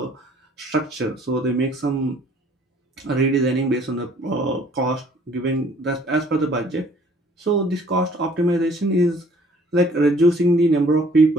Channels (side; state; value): both; normal; correlation 0.57